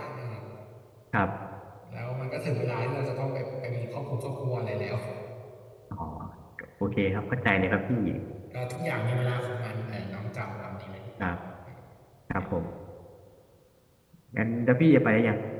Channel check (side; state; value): both; identical; correlation 1.00